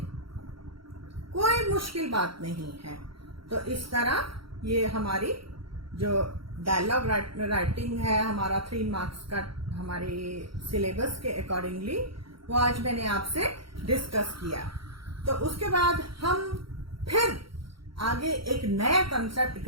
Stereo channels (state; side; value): late; left; 0.74 ms